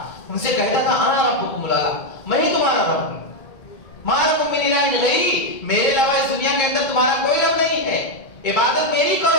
ان سے کہتا تھا انا ربکم الاعلی، میں ہی تمہارا رب ہوں، ما لکم من الہ غیری، میرے علاوہ اس دنیا کے اندر تمہارا کوئی رب نہیں ہے، عبادت میری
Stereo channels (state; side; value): late; right; 2.2 ms